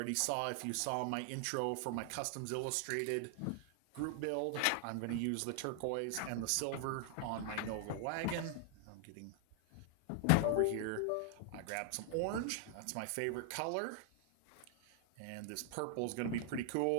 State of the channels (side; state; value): both; different; correlation 0.00